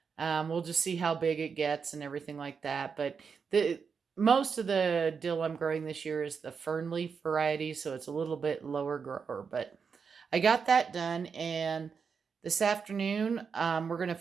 We'll just see how big it gets and everything like that. But the most of the dill I'm growing this year is the fern leaf variety, so it's a little bit lower grower. But I got that done, and this afternoon we're going to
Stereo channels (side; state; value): left; quieter; 5.9 dB